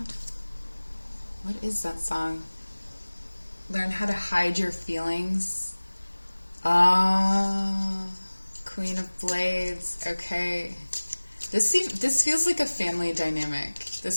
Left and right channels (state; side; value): inverted; both; correlation -1.00